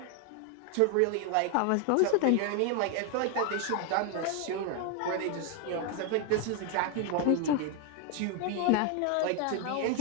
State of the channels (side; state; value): both; different; correlation 0.01